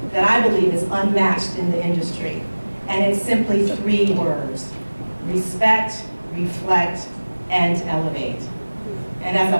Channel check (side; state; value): both; inverted; correlation -1.00